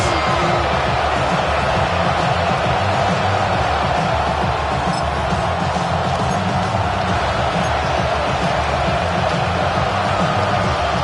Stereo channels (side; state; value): right; noise; rumble, 24 dB below the sound